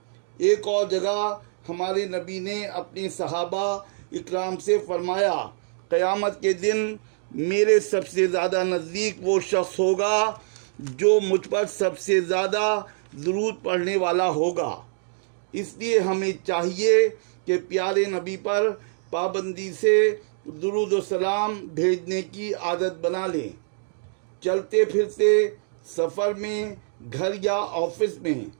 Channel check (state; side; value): silent; left; digital silence